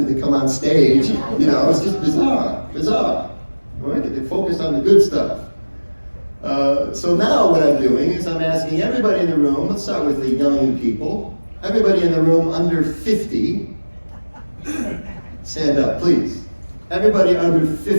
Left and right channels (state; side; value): inverted; both; correlation -1.00